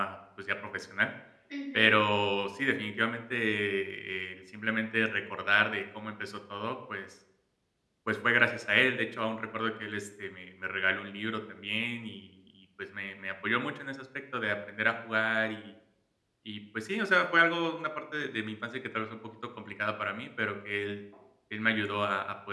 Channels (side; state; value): both; identical; correlation 1.00